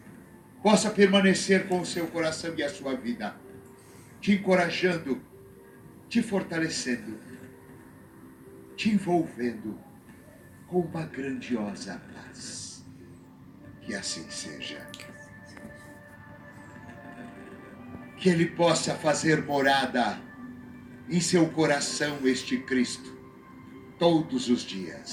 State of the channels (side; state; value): both; identical; correlation 1.00